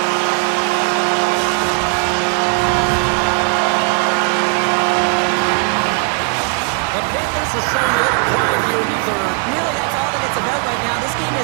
The Panthers are showing a little pride here in the third. Really, that's all that it's about right now. This game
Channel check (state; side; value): quieter; left; 36.4 dB